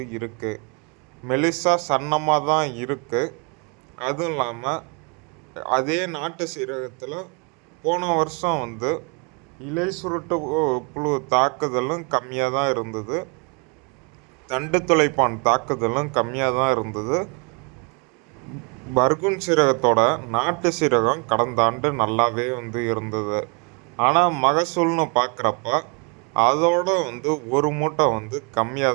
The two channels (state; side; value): quieter; left; 34.3 dB